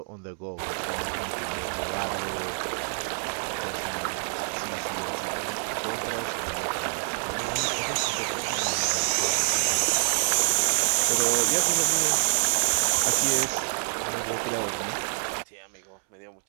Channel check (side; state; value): left; silent; 60 dB below the other